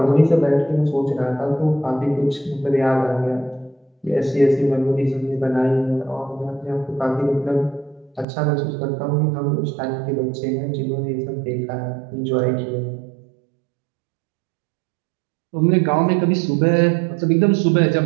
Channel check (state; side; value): drops out; left; at 8.2 s